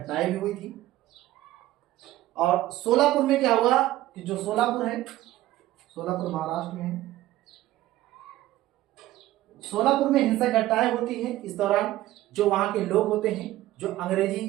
भी हुई थी। और सोलापुर में क्या हुआ कि जो सोलापुर है, सोलापुर महाराष्ट्र में है, सोलापुर में हिंसक घटनाएं होती हैं। इस दौरान जो वहां के लोग होते हैं, जो अंग्रेजी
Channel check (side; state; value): left; quieter; 15.5 dB